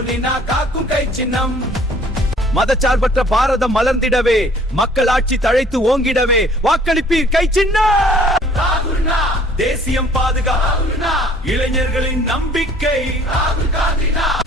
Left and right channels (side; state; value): both; normal; correlation 0.55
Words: காக்கும் கை சின்னம். மதச்சார்பற்ற பாரதம் மலர்ந்திடவே, மக்களாட்சி தழைத்து ஓங்கிடவே வாக்களிப்பீர் கை சின்னம். தேசியம் பாதுகாப்பு, இளைஞர்களின் நம்பிக்கை,